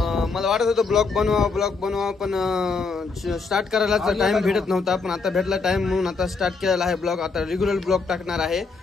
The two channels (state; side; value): quieter; right; 4.4 dB